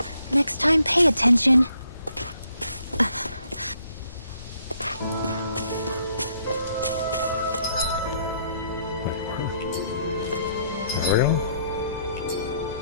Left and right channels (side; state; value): both; inverted; correlation -0.69